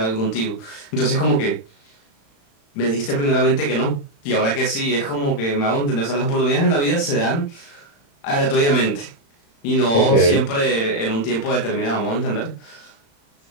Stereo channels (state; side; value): late; right; 35 ms